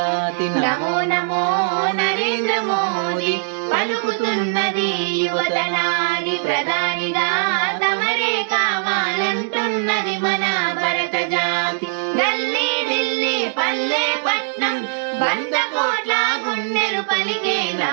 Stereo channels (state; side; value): silent; left; 65 dB below the other